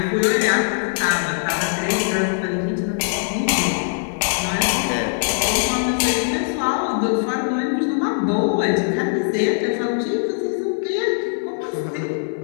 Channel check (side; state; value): right; silent; 65 dB below the other